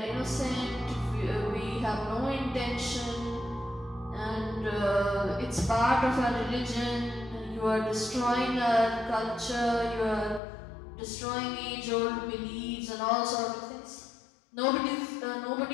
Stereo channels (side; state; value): right; drops out; at 10.4 s